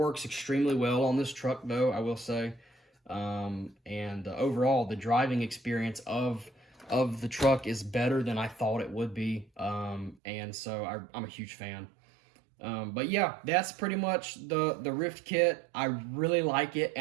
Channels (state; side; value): drops out; left; at 10.2 s